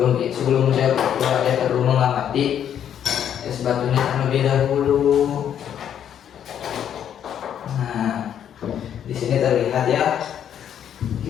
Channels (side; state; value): right; quieter; 9.4 dB